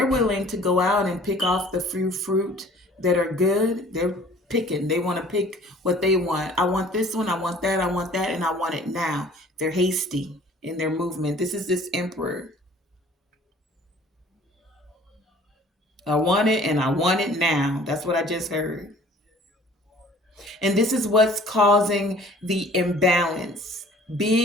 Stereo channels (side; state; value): both; normal; correlation 0.52